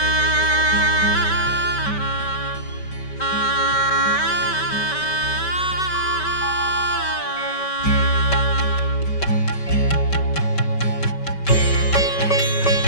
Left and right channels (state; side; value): late; right; 5.2 ms